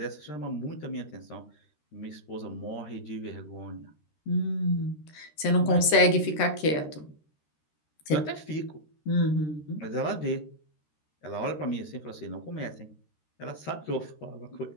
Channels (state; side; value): late; right; 13 ms